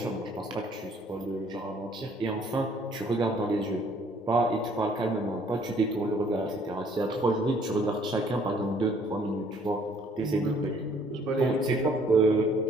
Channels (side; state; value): both; normal; correlation 0.61